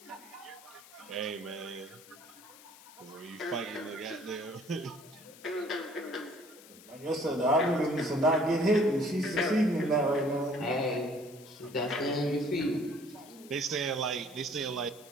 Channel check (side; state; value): left; noise; hiss, 21 dB below the sound